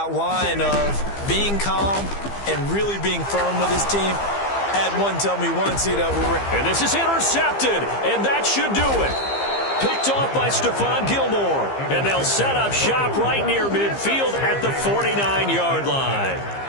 line of being calm and really being firm with his team. Had one tell me once, and this is intercepted, and that should do it. Picked off by Stephon Gilmore, and they'll set up shop right near midfield at the 49-yard line.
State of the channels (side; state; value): right; late; 15 ms